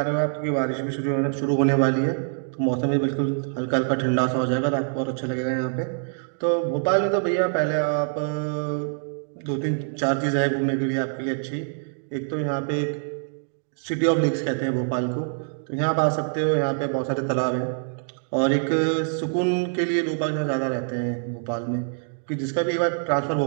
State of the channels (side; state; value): left; silent; digital silence